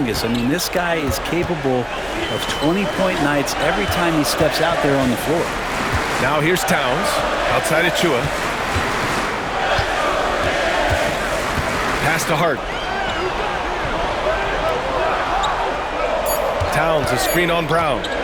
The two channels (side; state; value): both; identical; correlation 1.00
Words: I mean, this guy is capable of 20-point nights every time he steps out there on the floor. Now here's Towns, outside Achua. Pass to Hart. Towns a screen on Brown.